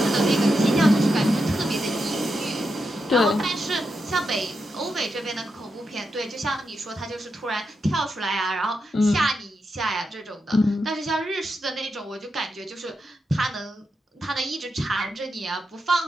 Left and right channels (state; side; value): normal; both; correlation 0.86